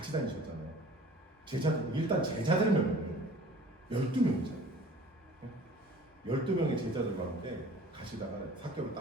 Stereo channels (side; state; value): both; normal; correlation 0.47